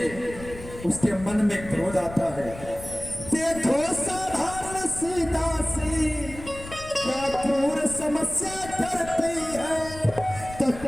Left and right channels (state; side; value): noise; left; rumble, 14 dB below the sound